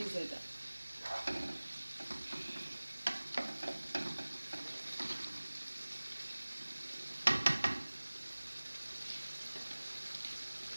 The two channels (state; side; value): inverted; both; correlation -1.00